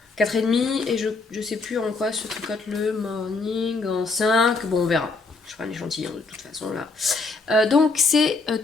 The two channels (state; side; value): quieter; right; 3.9 dB